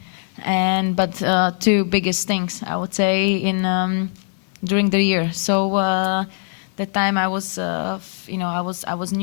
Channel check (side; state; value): right; silent; 55 dB below the other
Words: But 2 biggest things, I would say, during the year. So that time I was, I was